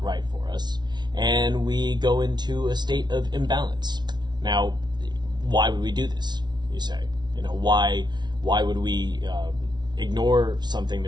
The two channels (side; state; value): left; late; 0.20 ms